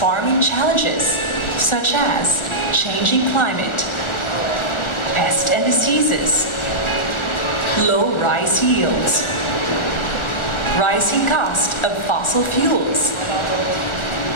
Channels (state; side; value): late; right; 1.4 ms